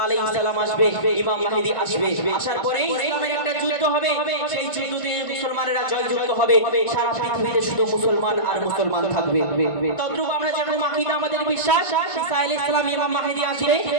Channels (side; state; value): right; late; 1.5 ms